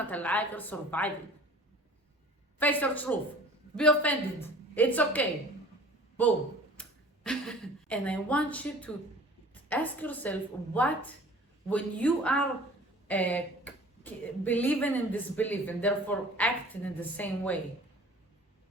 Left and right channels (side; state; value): both; normal; correlation 0.46